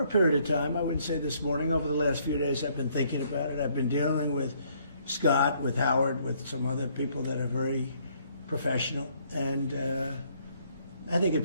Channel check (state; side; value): inverted; both; correlation -0.66